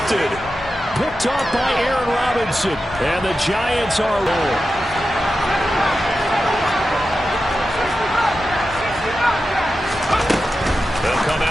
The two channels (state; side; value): normal; both; correlation 0.91